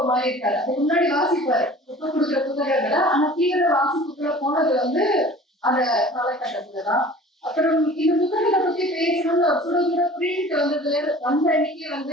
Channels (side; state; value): both; normal; correlation 0.44